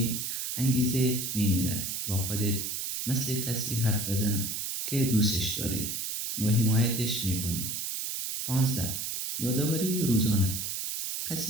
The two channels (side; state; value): right; noise; hiss, 3 dB below the sound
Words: انگیزه می میرد. با خودت مثل کسی حرف بزن که دوستش داری و حمایتش می کنی. 15، یادآوری روزانه.